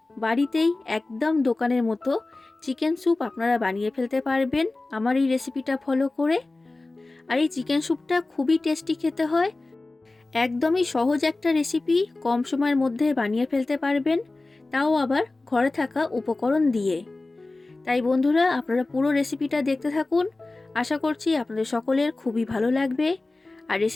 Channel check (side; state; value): right; quieter; 3.1 dB